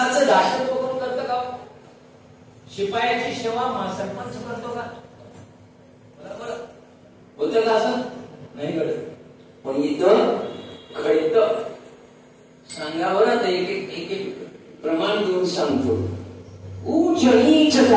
दासत्व कोण करतं का? शिपायाची सेवा सरपंच करतो का? बरोबर होतं का? असं नाही घडत. पण इथं घडतं. सांगा बरं, एक एक प्रमाण देऊन सांगतो. उच्च नीच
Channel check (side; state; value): both; identical; correlation 1.00